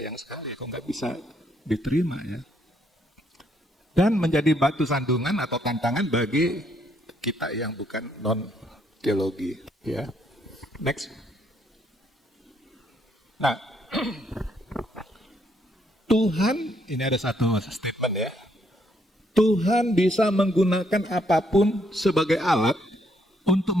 sekali kok nggak bisa diterima ya. Dan menjadi batu sandungan atau tantangan bagi kita yang bukan non-teologi. Ya. Next. Nah, Tuhan, ini ada satu statement ya. Tuhan bisa menggunakan apapun sebagai alat untuk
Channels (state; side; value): normal; both; correlation 0.72